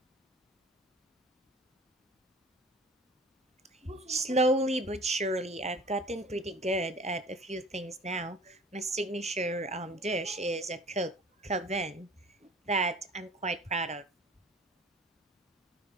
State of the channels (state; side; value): normal; both; correlation 0.45